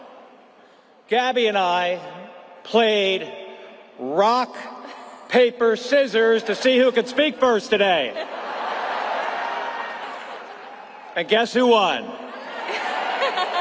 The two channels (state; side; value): identical; both; correlation 1.00